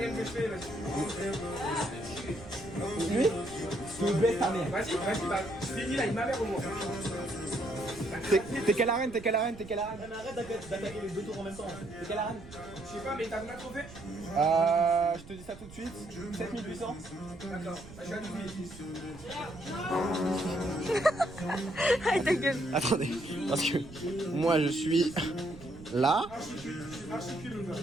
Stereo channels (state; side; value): noise; right; rumble, 18 dB below the sound